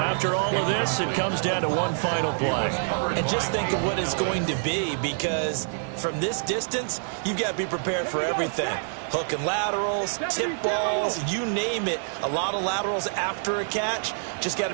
all of this, it comes down to one final play. And just think of what it's going to be, because from this distance, you've got to be prepared for everything. Hook and laterals, tip balls, you name it. A lot of laterals after a catch. Just got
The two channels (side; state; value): left; silent; 58 dB below the other